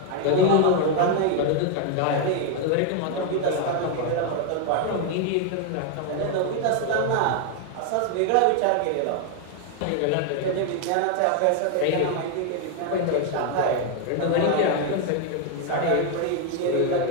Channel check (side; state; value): both; different; correlation 0.01